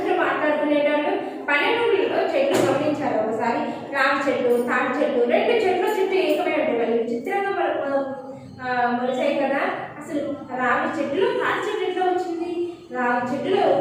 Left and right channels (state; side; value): identical; both; correlation 1.00